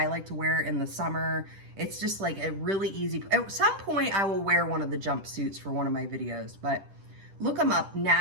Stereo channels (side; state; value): left; late; 10 ms